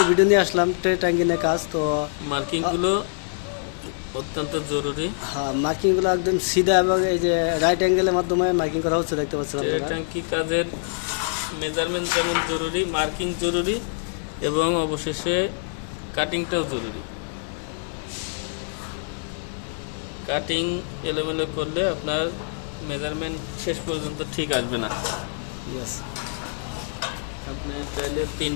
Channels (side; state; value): right; silent; digital silence